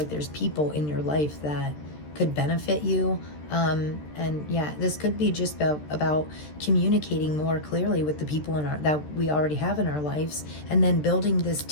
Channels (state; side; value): late; right; 13 ms